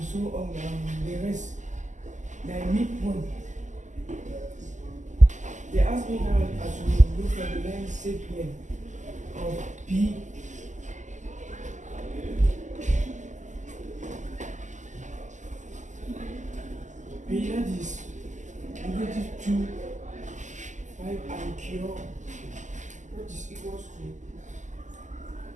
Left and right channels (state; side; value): late; left; 0.35 ms